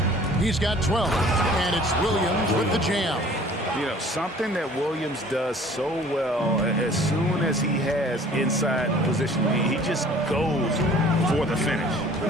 He's got 12. And it's Williams with the jam. You know, something that Williams does so well, as soon as he has inside position, he just goes for the finish.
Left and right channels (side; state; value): both; normal; correlation 0.51